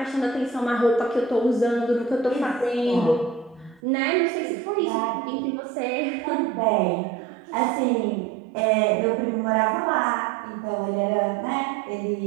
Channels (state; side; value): drops out; left; at 3.8 s